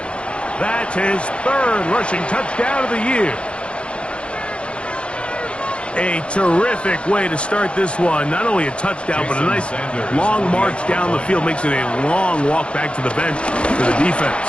That's his 3rd rushing touchdown of the year. A terrific way to start this one. Not only a touchdown, but a nice long march down the field. Makes it a long walk back to the bench for the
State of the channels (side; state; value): right; late; 0.059 ms